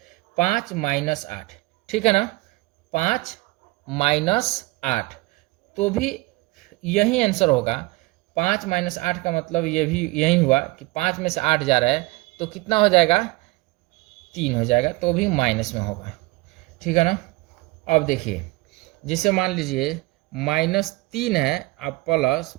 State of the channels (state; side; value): quieter; left; 22.0 dB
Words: 5 - 8, ठीक है ना, 5 -8, तो भी यही आंसर होगा। 5 - 8 का मतलब ये भी यही हुआ कि 5 में से 8 जा रहा है तो कितना हो जाएगा, 3 हो जाएगा, तो भी माइनस में होगा। ठीक है ना। अब देखिए, जिसे मान लीजिए -3 है अब